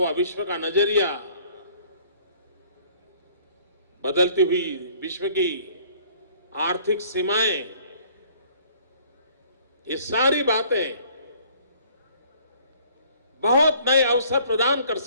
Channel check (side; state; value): both; inverted; correlation -0.56